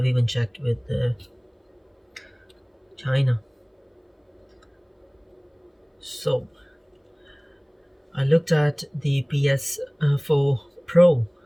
even checked with China. So I looked at the PS4 Pro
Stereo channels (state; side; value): identical; both; correlation 1.00